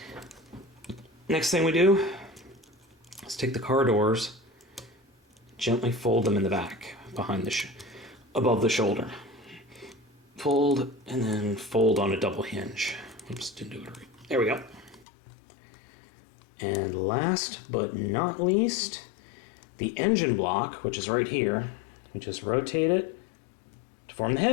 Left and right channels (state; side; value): drops out; right; at 15.1 s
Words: Next thing we do is take the car doors, gently fold them in the back, behind the above the shoulder. Fold, and then fold on a double hinge. Oops, didn't do it right. There we go. And last but not least, the engine block, which is right here. We just rotate it to form the